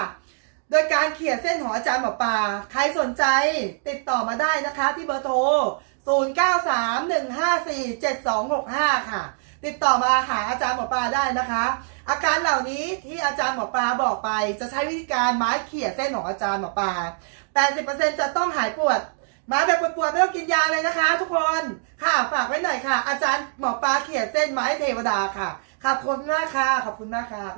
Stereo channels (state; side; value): silent; left; digital silence